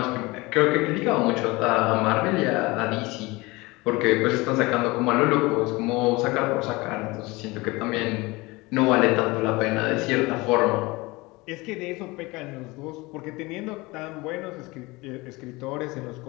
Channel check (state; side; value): quieter; right; 22.9 dB